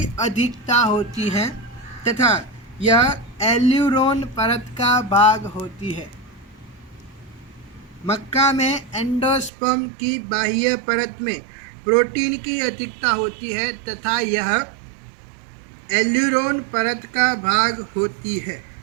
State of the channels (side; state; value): left; drops out; at 9.5 s